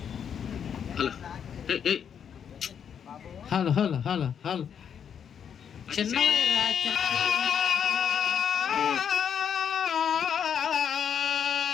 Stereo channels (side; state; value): right; quieter; 7.9 dB